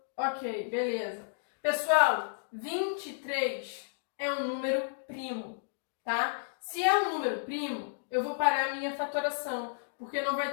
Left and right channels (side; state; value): right; silent; digital silence